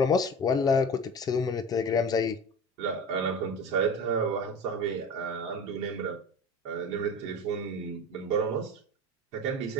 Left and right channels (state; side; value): normal; both; correlation 0.33